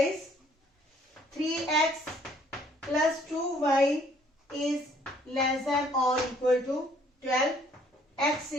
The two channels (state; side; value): normal; both; correlation 0.62